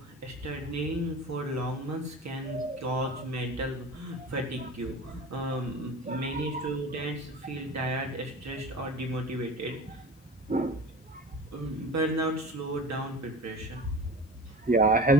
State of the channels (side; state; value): both; normal; correlation 0.35